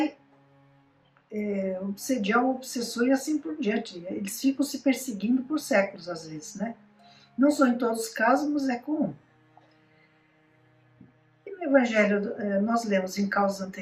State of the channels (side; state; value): both; identical; correlation 1.00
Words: obsediar o obsessor e assim por diante. Eles ficam se perseguindo por séculos, às vezes, Não são em todos os casos, mas é comum. E no Evangelho, nós lemos em causas